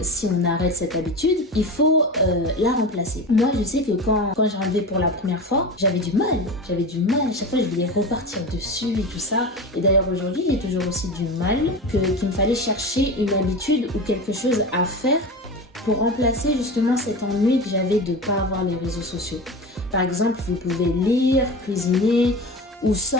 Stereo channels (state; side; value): normal; both; correlation 0.28